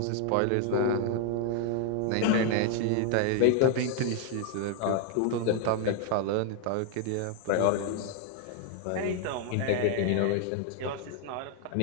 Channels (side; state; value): both; different; correlation 0.00